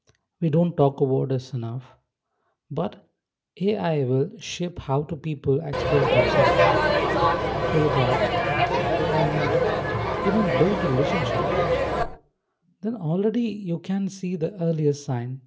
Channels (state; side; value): identical; both; correlation 1.00